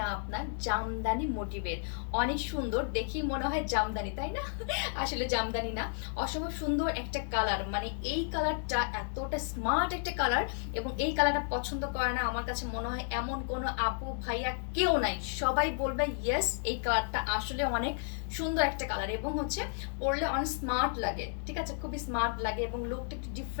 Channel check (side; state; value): right; silent; 56 dB below the other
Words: আপনার জামদানি মোটিভের। অনেক সুন্দর, দেখি মনে হয় জামদানি, তাই না? আসলে জামদানি না। অসম্ভব সুন্দর একটা কালার, মানে এই কালারটা এতটা স্মার্ট একটা কালার, এবং এই কালারটা পছন্দ করে না আমার কাছে মনে হয় এমন কোনো আপু ভাইয়া কেউ নাই। সবাই বলবে ইয়েস, এই কালারটা আসলে অনেক সুন্দর একটা কালার, এবং হচ্ছে পরলে অনেক স্মার্ট লাগে। ঠিক আছে, খুবই স্মার্ট লাগে এবং লুকটা একটু